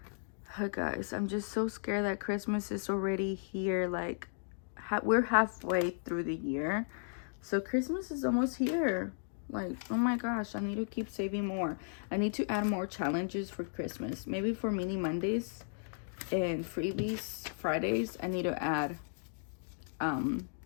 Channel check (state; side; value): silent; right; digital silence